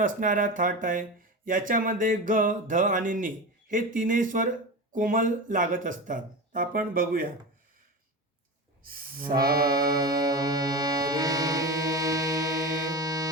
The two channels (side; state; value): both; normal; correlation 0.25